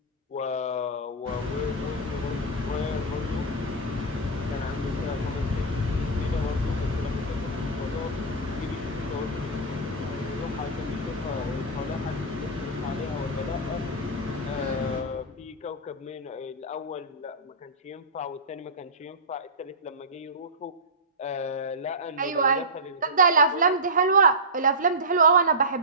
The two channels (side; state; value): both; normal; correlation -0.11